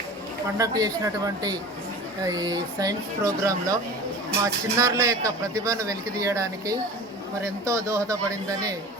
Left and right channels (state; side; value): normal; both; correlation 0.37